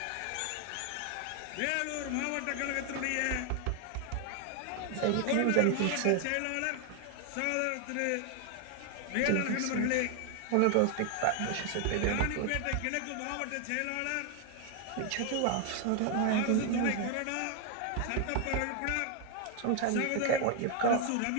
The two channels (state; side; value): different; both; correlation 0.00